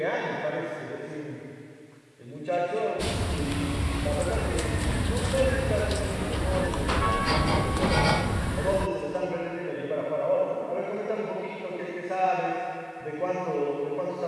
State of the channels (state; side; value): identical; both; correlation 1.00